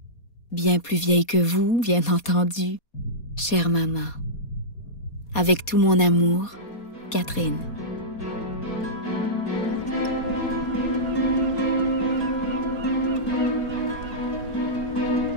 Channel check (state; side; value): late; right; 4.2 ms